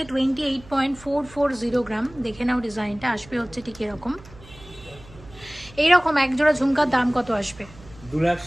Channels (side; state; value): right; noise; hum, 21 dB below the sound